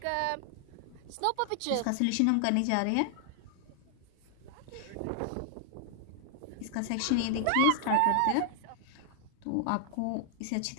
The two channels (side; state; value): both; different; correlation 0.00